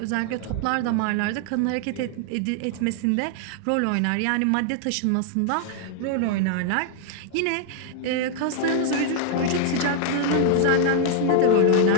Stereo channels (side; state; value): both; different; correlation 0.00